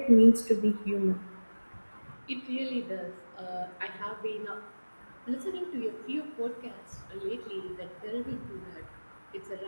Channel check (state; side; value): inverted; both; correlation -1.00